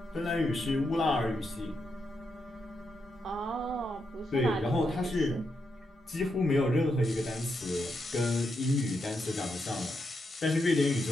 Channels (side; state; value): both; normal; correlation 0.83